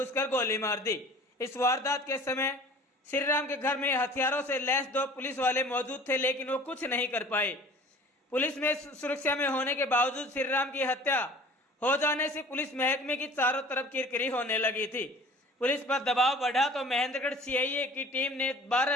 गोली मार दी। इस वारदात के समय श्रीराम के घर में हथियारों से लैस 2 पुलिस वाले मौजूद थे, लेकिन वो कुछ नहीं कर पाए। पुलिस में सुरक्षा में होने के बावजूद श्रीराम की हत्या हो जाने से पुलिस महकमे की चारों तरफ किरकिरी होने लगी थी। पुलिस पर दबाव बढ़ा तो महेंद्रगढ़ सीआईए की टीम ने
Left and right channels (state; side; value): normal; both; correlation 0.46